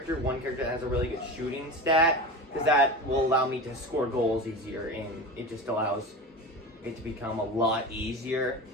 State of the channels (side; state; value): both; normal; correlation 0.28